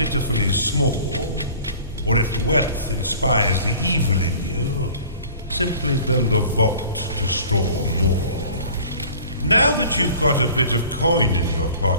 small, or if wealth inspires the evil in you, simply build a vault to store more. Now that you've got a bit of coin in your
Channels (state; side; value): inverted; both; correlation -0.46